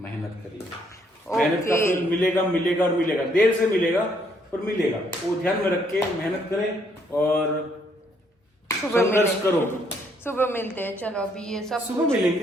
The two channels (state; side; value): normal; both; correlation 0.69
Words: करिए। मेहनत का फल मिलेगा और मिलेगा, देर से मिलेगा पर मिलेगा, वो ध्यान में रख के मेहनत करें और संघर्ष करो। सुबह मिलते हैं, चलो अभी ये सब सुबह